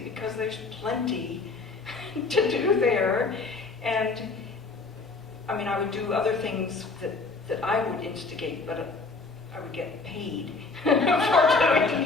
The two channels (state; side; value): quieter; right; 4.0 dB